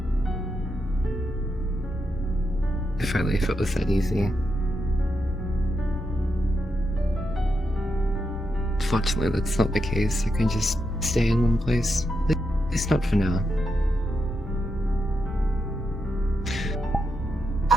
If only if it was that easy. Fortunately, that's not the case. I can just stay in one place. At least not for now.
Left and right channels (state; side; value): normal; both; correlation 0.84